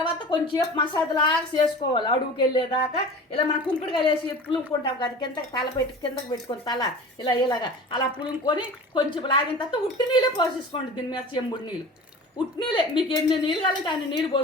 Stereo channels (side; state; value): both; normal; correlation 0.37